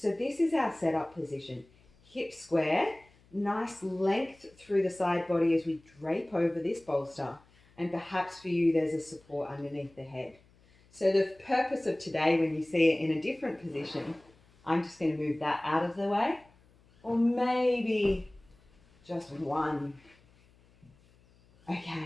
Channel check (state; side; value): noise; left; hum, 30 dB below the sound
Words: this is our setup position. Hip square, nice length through the side body as we drape over this bolster. And perhaps for you, there's a support underneath the head. So the purpose of today, when you see it in a different position, I'm just going to move that out of the way. Or maybe just one.